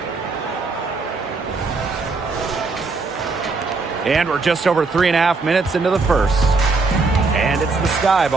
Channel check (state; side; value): quieter; left; 3.9 dB